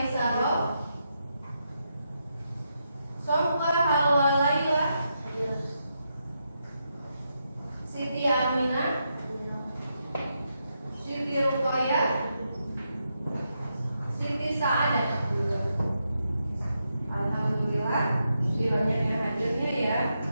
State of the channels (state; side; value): inverted; both; correlation -0.83